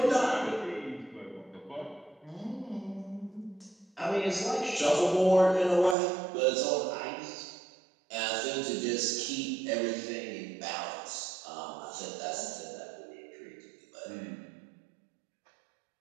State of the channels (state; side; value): drops out; left; at 6.0 s